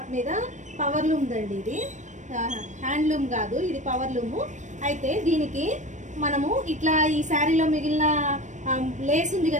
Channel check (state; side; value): late; left; 0.35 ms